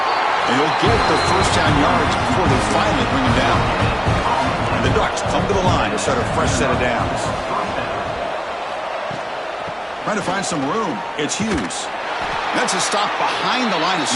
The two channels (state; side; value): identical; both; correlation 1.00